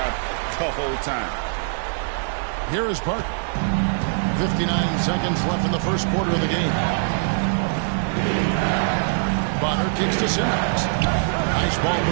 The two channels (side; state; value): left; silent; digital silence